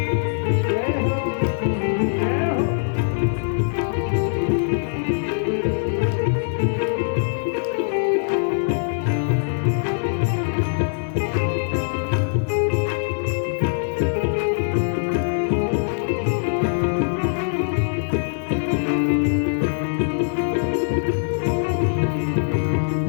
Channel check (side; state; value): right; silent; digital silence